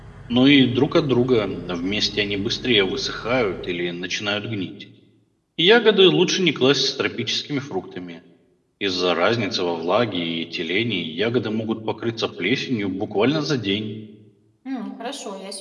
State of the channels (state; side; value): identical; both; correlation 1.00